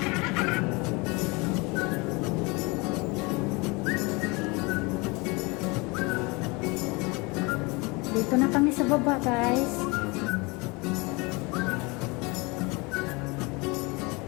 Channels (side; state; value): right; quieter; 26.9 dB